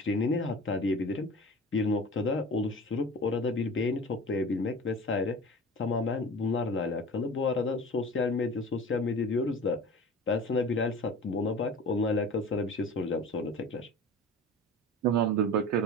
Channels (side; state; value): both; normal; correlation 0.37